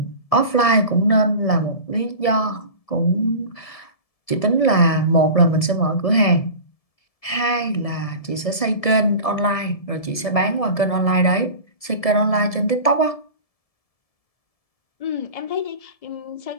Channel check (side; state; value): right; late; 1.7 ms